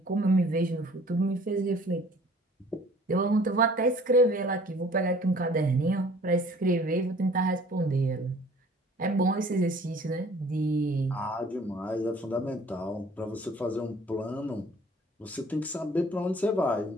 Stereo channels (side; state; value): both; normal; correlation 0.53